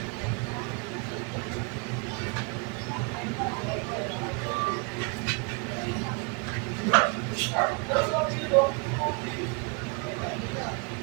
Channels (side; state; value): left; quieter; 32.8 dB